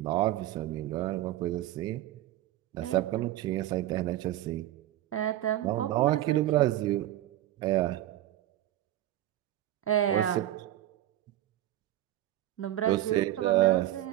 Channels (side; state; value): left; quieter; 13.8 dB